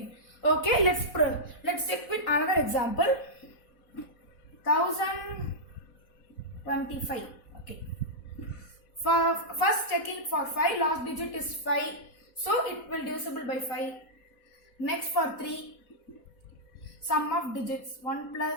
Okay, let's check with another example. 1025. Okay. For first checking for 5, last digit is 5. So it will divisible by 5. Next for 3. Sum of digits 1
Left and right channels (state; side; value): late; right; 4.1 ms